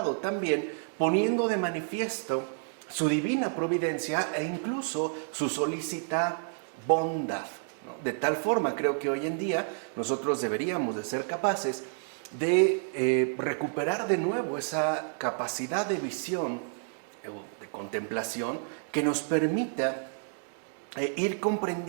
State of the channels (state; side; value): silent; left; digital silence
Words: también poniendo de manifiesto su divina providencia e incluso su solícita bondad, ¿no? De tal forma, creo que hoy en día nosotros deberíamos de ser capaces de recuperar de nuevo esa capacidad de visión, de contemplación, que nos permita ir